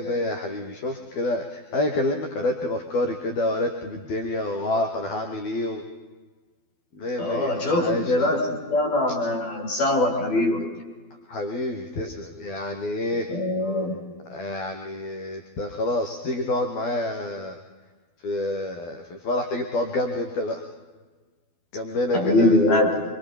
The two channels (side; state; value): right; late; 12 ms